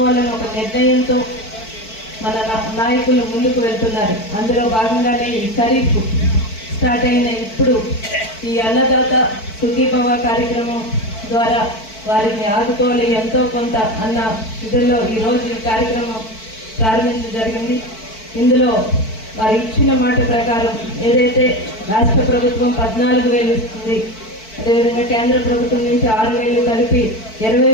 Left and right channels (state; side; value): late; right; 4.5 ms